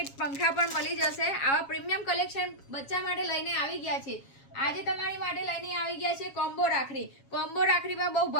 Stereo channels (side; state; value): right; late; 7.3 ms